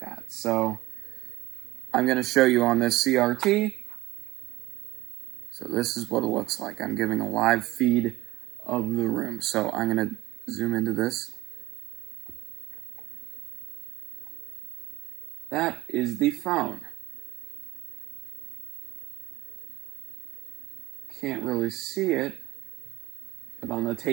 that. So I'm going to show you on this CRT. So this is what it looks like. I'm giving a live feed of the room. So I'm going to zoom into this. That is the phone. Can't really see it, but on the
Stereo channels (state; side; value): quieter; left; 18.3 dB